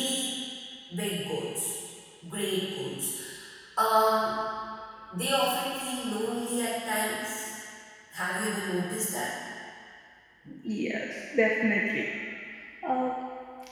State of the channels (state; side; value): identical; both; correlation 1.00